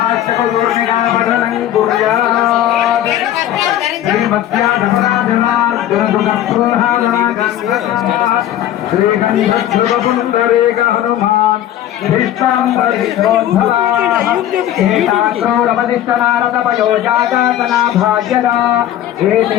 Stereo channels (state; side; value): quieter; right; 12.1 dB